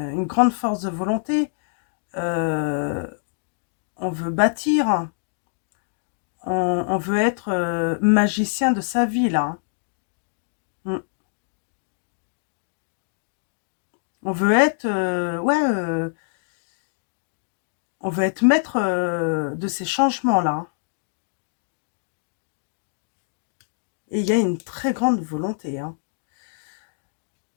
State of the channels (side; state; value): right; silent; digital silence